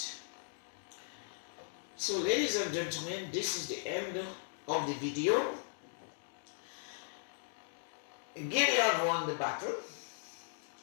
So ladies and gentlemen, this is the end of the video. Gideon won the battle.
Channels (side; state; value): right; silent; digital silence